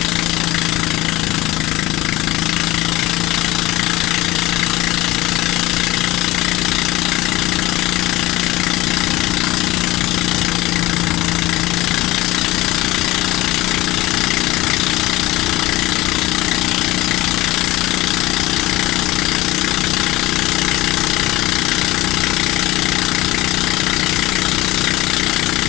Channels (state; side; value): quieter; right; 18.5 dB